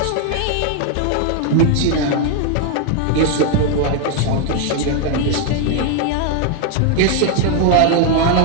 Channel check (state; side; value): different; both; correlation 0.00